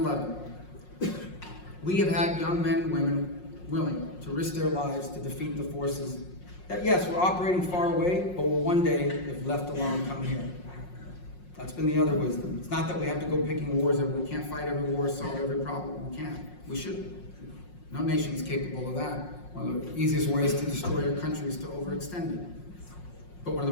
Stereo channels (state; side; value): late; right; 5.5 ms